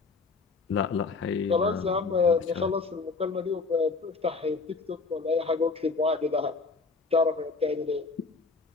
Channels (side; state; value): right; quieter; 4.2 dB